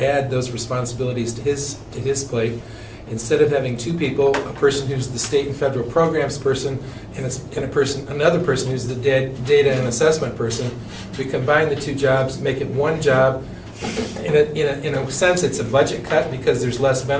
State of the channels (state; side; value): identical; both; correlation 1.00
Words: those responsibilities to his plate. Instead of having 2 people, a person who's the state and federal programs person and another person who's the data and assessment person, we combine the 2 jobs, make it 1 job in a sense, it's a budget cut because there's less